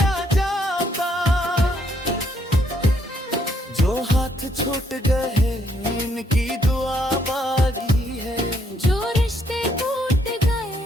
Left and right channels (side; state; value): both; normal; correlation 0.71